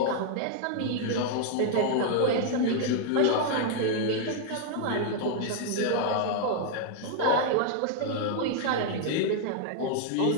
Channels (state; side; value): different; both; correlation -0.01